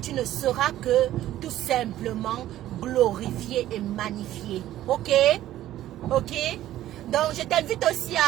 ne seras que tout simplement glorifié et magnifié. Ok? Ok? Donc je t'invite aussi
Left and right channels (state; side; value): quieter; left; 13.6 dB